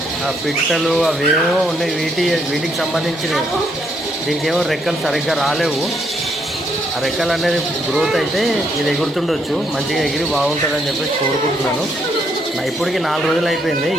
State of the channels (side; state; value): both; normal; correlation 0.73